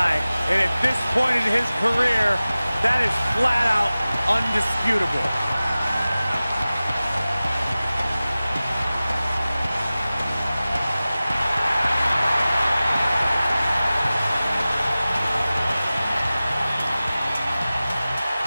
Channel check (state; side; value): inverted; both; correlation -0.97